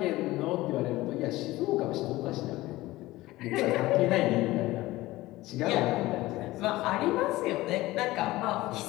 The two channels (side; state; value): right; quieter; 18.2 dB